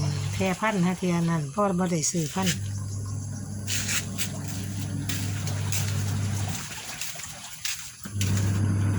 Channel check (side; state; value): both; identical; correlation 1.00